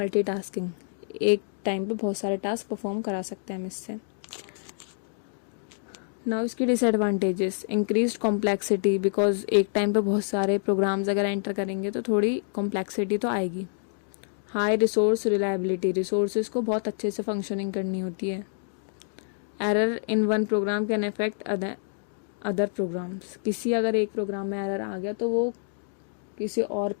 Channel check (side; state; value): right; silent; digital silence